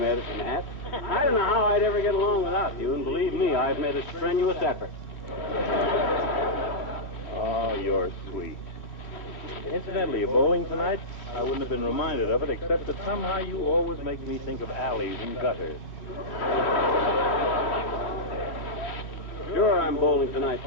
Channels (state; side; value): late; right; 2.8 ms